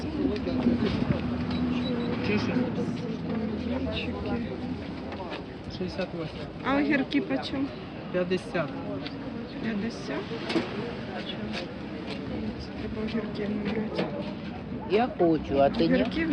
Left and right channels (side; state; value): both; identical; correlation 1.00